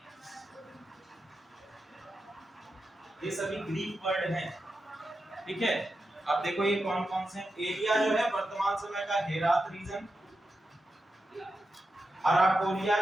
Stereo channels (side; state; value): both; normal; correlation 0.89